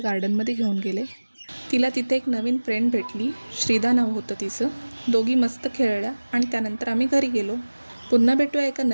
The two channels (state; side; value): inverted; both; correlation -1.00